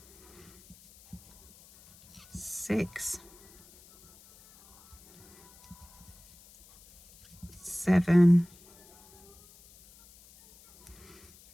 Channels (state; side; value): noise; left; hiss, 25 dB below the sound